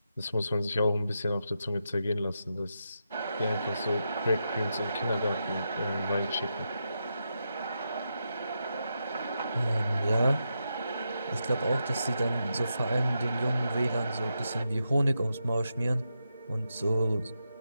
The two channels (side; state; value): both; inverted; correlation -0.85